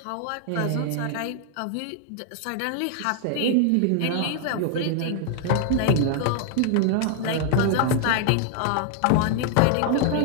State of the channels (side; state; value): both; different; correlation 0.00